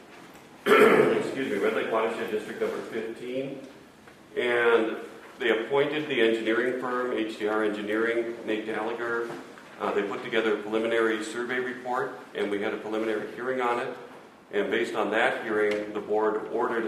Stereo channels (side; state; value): both; identical; correlation 1.00